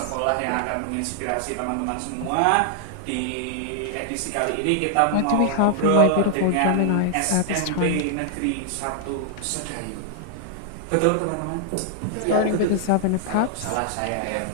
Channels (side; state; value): both; different; correlation 0.00